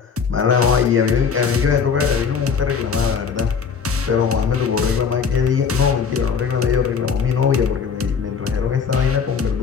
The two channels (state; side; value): quieter; right; 6.1 dB